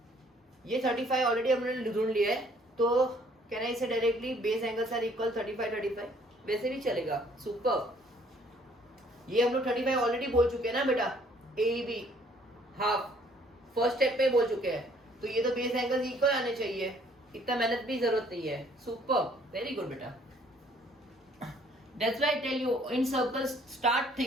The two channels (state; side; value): normal; both; correlation 0.61